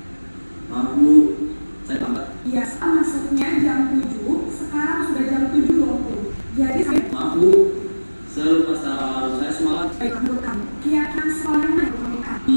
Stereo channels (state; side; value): inverted; both; correlation -1.00